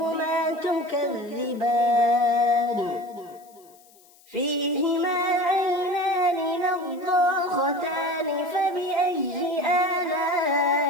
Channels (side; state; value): left; noise; hiss, 28 dB below the sound